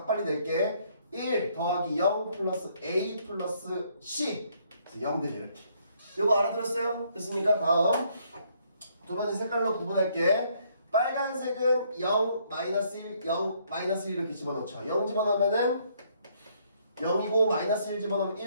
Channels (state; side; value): inverted; both; correlation -0.68